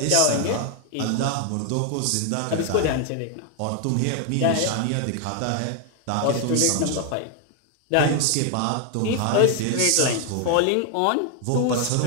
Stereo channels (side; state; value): both; different; correlation 0.00